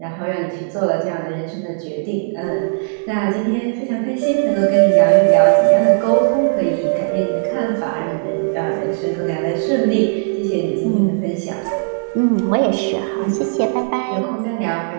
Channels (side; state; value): left; silent; digital silence